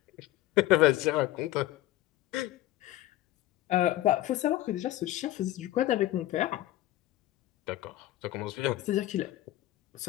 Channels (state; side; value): quieter; right; 15.3 dB